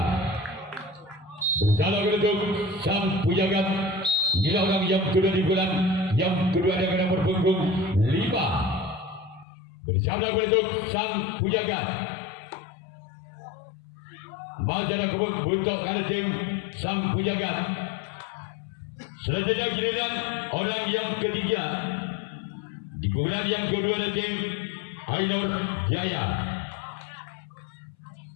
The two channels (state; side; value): drops out; right; at 9.5 s